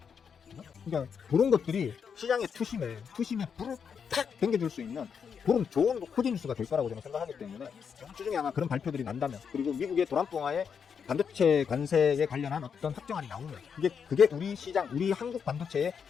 그러니까 그런 것들이 시장의 투심에 불을 탁 당겨줄 수 있는 그런 좋은 호재 뉴스가 될 거라고 저는 생각하기 때문에 이번 주 중에 아마 그런 발표들이 난다면, 그리고 미국의 도란봉화에 반도체 관세에 관련한 어떤 확정안이 나오면 그게 우리 시장, 우리 한국 반도체에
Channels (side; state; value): right; quieter; 6.8 dB